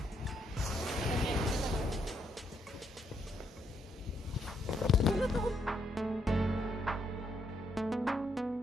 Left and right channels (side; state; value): both; normal; correlation 0.76